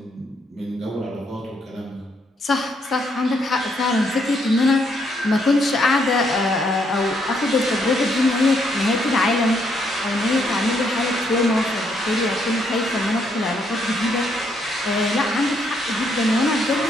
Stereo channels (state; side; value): normal; both; correlation 0.74